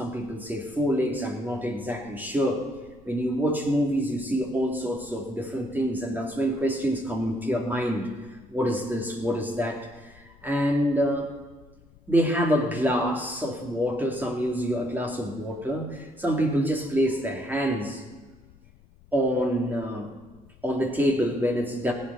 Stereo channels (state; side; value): noise; left; rumble, 26 dB below the sound